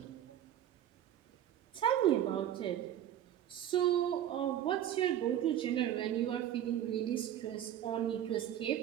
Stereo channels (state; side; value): quieter; left; 11.1 dB